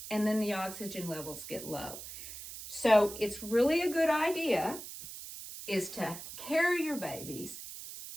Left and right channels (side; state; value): right; noise; hiss, 11 dB below the sound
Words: and then the oxygen levels get low. So it's really a good idea is to carry your babies